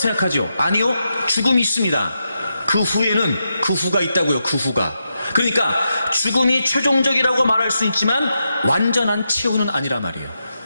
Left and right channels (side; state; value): both; inverted; correlation -0.86